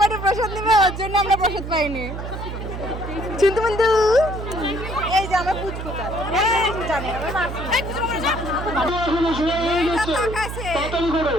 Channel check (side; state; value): right; noise; hum, 7 dB below the sound